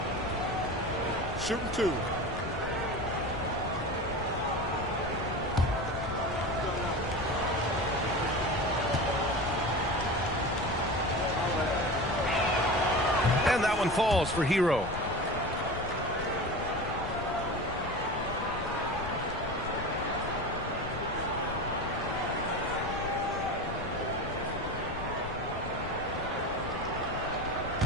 Shooting 2. And that one falls for Hero.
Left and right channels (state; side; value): noise; left; rumble, 9 dB below the sound